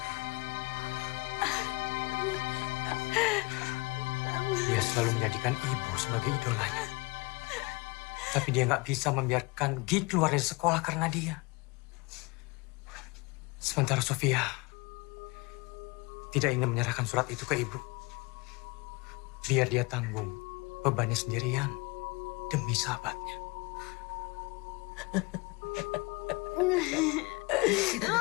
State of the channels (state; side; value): quieter; right; 26.2 dB